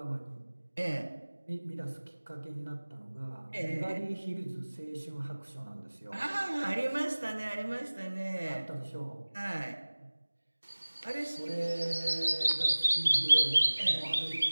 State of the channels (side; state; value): both; inverted; correlation -1.00